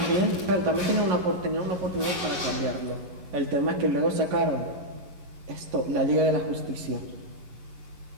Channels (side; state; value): left; late; 11 ms